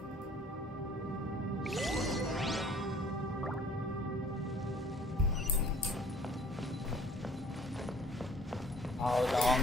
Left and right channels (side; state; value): both; normal; correlation 0.53